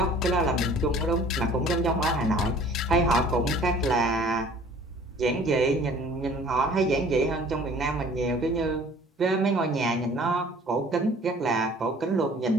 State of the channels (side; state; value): both; normal; correlation 0.50